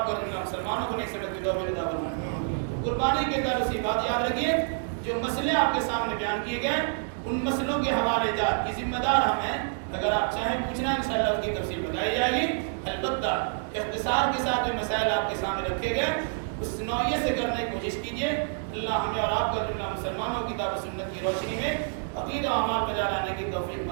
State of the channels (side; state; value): left; silent; digital silence